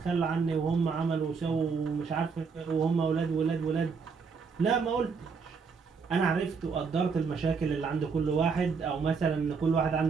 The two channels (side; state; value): left; quieter; 5.3 dB